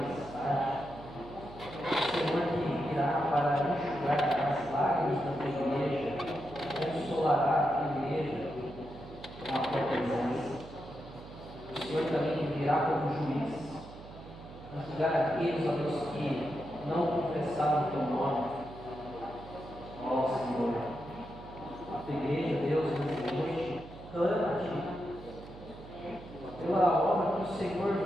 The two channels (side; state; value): right; noise; hum, 15 dB below the sound